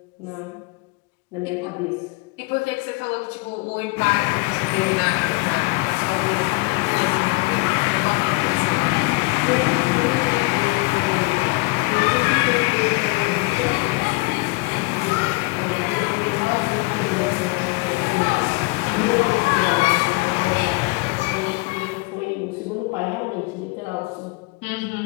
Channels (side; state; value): right; quieter; 25.3 dB